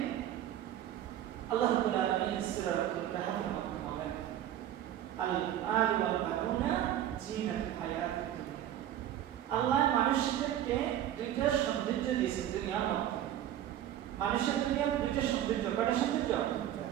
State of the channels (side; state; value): left; quieter; 11.6 dB